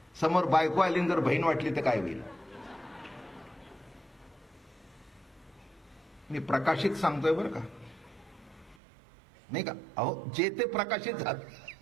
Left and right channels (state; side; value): drops out; left; at 8.8 s